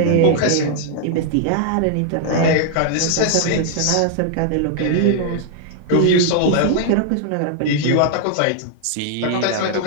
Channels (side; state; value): both; different; correlation 0.00